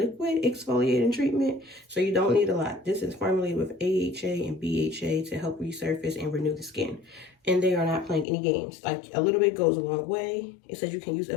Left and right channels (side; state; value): right; drops out; at 8.2 s